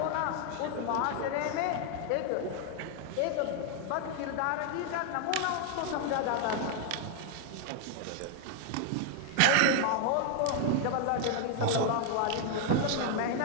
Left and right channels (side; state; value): both; different; correlation 0.00